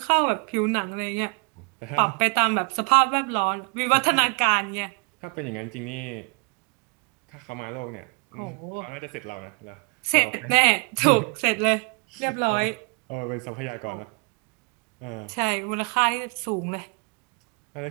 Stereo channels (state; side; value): quieter; left; 34.3 dB